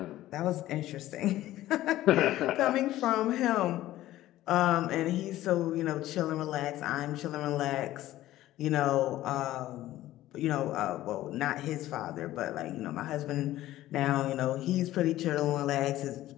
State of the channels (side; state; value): right; quieter; 14.9 dB